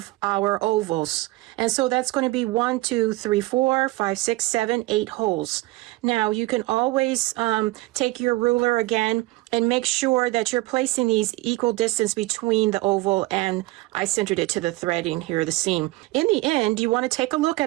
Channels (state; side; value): quieter; left; 20.1 dB